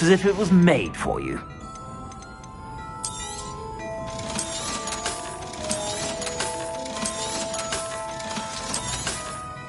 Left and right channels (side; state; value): both; identical; correlation 1.00